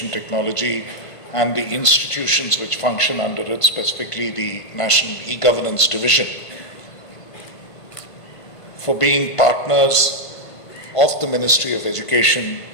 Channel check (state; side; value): late; right; 1.5 ms